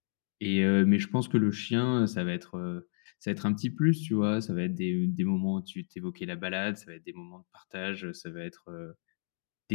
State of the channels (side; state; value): right; silent; digital silence